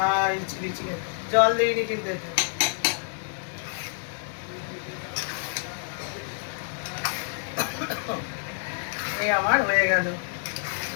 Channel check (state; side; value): silent; right; 58 dB below the other